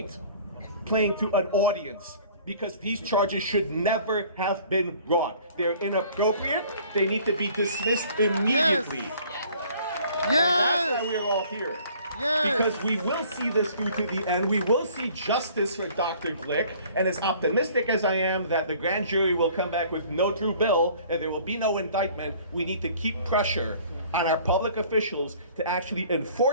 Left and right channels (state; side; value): inverted; both; correlation -0.53